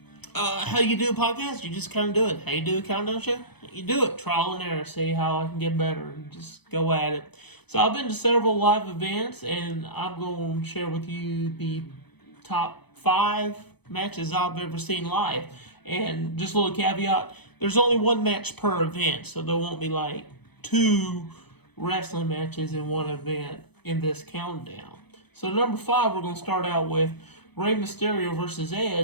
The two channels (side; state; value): right; late; 0.98 ms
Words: how you do a podcast? You just kind of do it. How you do a countdown show? You do it. Trial and error. See how I can get better. And just go at it. So I've been to several live events, and I'm going to share with you the top 5 matches I've ever seen live. And just a little caveat: there's only one match per event, so there won't be like 2 wrestling matches in one event in this countdown. So number 5, we're going to start out with Rey Mysterio versus